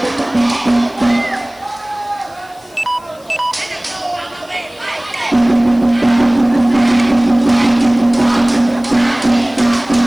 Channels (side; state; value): left; noise; hiss, 28 dB below the sound